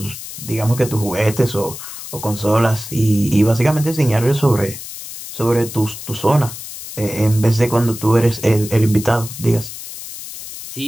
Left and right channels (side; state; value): left; noise; hiss, 11 dB below the sound